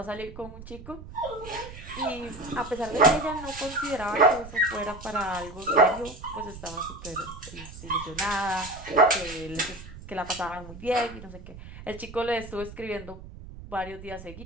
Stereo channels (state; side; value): noise; right; rumble, 14 dB below the sound